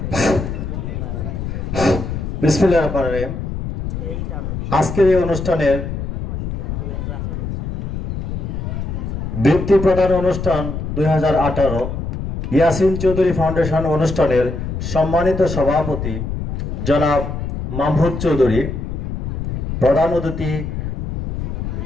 বিসমিল্লাহির রহমানির রহিম। আজকের এই অনুষ্ঠানের বৃত্তি প্রদান অনুষ্ঠান 2018 ইয়াসিন চৌধুরী ফাউন্ডেশন অনুষ্ঠানের সম্মানিত সভাপতি জনাব মাহমুদ চৌধুরী, প্রধান অতিথি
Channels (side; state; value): left; noise; rumble, 4 dB below the sound